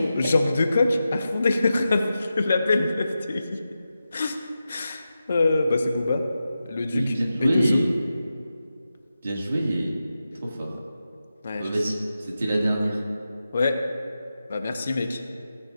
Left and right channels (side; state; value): both; inverted; correlation -0.91